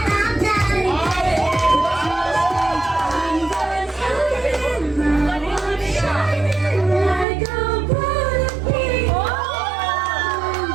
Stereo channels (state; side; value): drops out; left; at 7.2 s